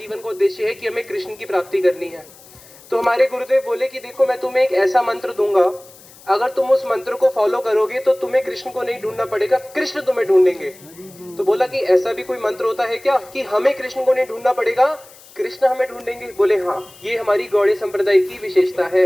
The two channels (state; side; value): noise; left; hiss, 23 dB below the sound